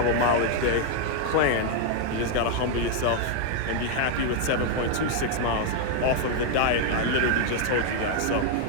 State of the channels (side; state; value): both; different; correlation 0.00